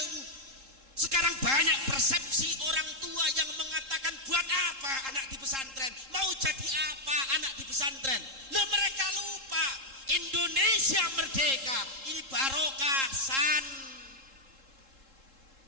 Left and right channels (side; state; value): left; late; 3.7 ms